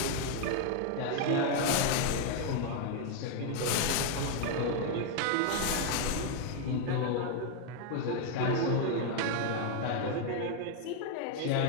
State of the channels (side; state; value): both; different; correlation 0.00